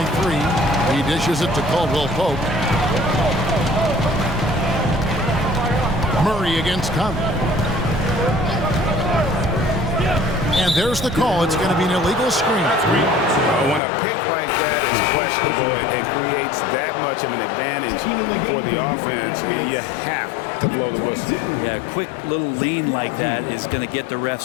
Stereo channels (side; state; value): right; drops out; at 13.8 s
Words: 3. He dishes it to Caldwell Pope. Murray against Conley. And there's the call. It's going to be an illegal screen. When a pick like that is questionable and creates that much of an advantage for the offense, you have to blow the whistle. Yeah, a quick little lean like that is going to get the